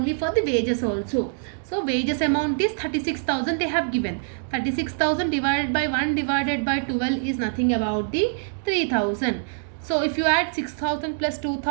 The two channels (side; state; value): left; silent; digital silence